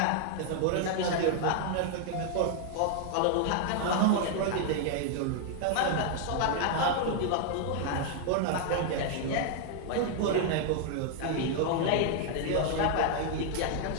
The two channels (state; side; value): different; both; correlation 0.00